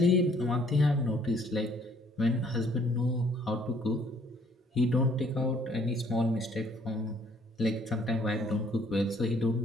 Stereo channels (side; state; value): both; normal; correlation 0.62